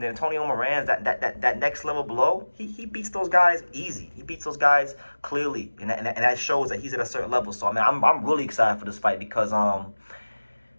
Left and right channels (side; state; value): both; inverted; correlation -1.00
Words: the Antonio Morans, that next level below, he beats those guys easy. He beats those guys clearly, and that shows that he's at a certain level. So, I'm really excited for this fight because,